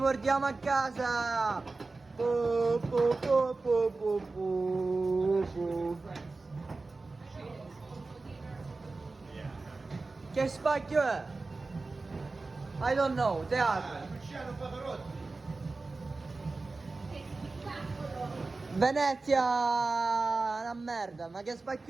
a casa! Po, po, po, po, po, po, po. Che spacchio è? I don't know, teatro. Luciano Pavarotti. Venezia, una merda, ma che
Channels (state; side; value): quieter; left; 3.6 dB